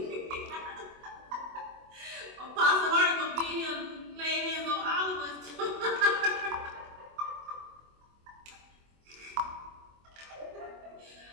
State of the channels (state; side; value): late; left; 24 ms